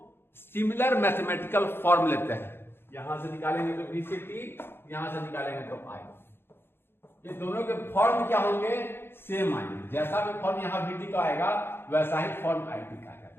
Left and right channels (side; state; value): right; late; 0.11 ms